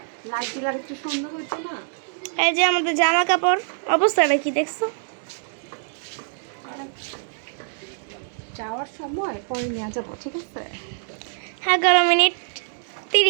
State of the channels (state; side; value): silent; left; 62 dB below the other